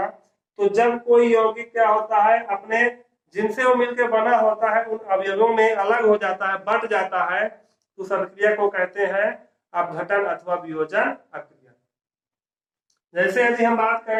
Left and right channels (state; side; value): identical; both; correlation 1.00